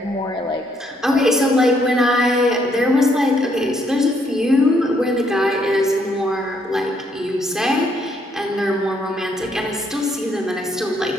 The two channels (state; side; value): normal; both; correlation 0.71